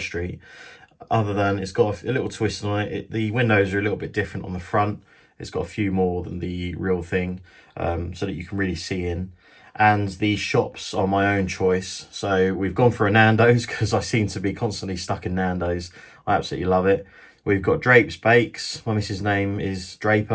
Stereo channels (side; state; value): both; identical; correlation 1.00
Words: Other than it's got a little twist on it. The windows are a little bit different on the front. It's got a few more than the real thing, so that you can really see in. And the shops are my own choice. So we've gone for a Nando's because I seem to be constantly stuck in Nando's. I absolutely love it. We've got Drape's Bakes. My missus' name is